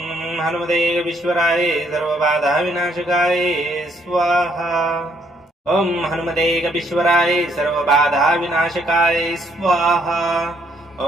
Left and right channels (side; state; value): both; normal; correlation 0.69